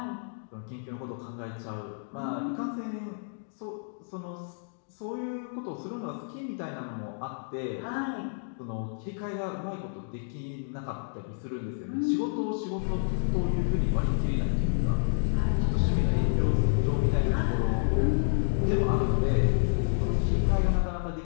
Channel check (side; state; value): right; silent; digital silence